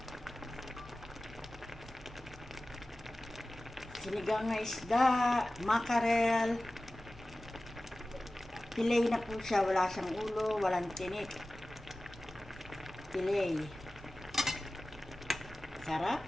Sinigang na isda, mackerel. Fillet na po siya, wala siyang ulo, walang tinik. Fillet. Sarap.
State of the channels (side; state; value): right; noise; hum, 26 dB below the sound